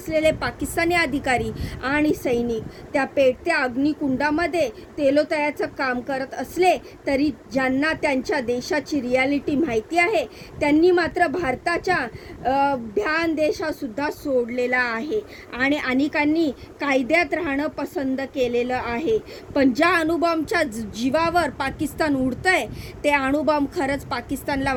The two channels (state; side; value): identical; both; correlation 1.00